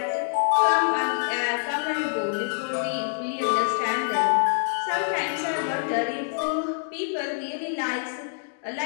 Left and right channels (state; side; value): silent; right; digital silence